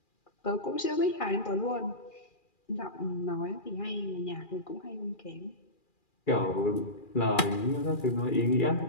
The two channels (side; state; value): right; late; 2.4 ms